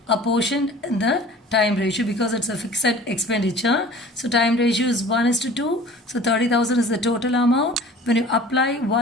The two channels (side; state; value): both; normal; correlation 0.45